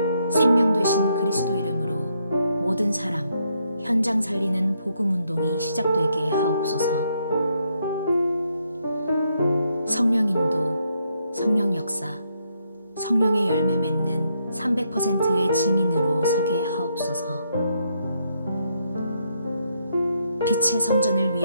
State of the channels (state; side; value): inverted; both; correlation -0.76